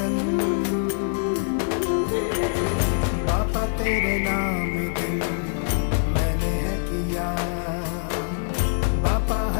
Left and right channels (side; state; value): right; silent; 62 dB below the other